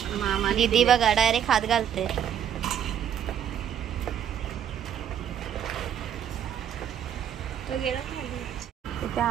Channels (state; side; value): quieter; left; 9.3 dB